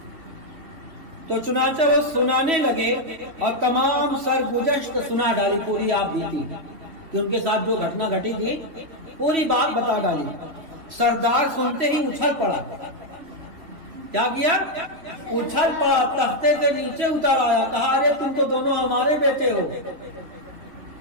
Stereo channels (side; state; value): left; late; 3.1 ms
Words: تو چنانچہ وہ سنانے لگے اور تمام سرگزشت سنا ڈالی، پوری آپ بیتی کہ ان کے ساتھ جو گھٹنا گھٹی تھی پوری بات بتا ڈالی۔ سردار سنتے ہی اچھل پڑا۔ کیا کیا؟ اچھل پڑا، تختے کے نیچے اتر آیا، کہا ارے تم تو دونوں ہمارے بیٹے ہو،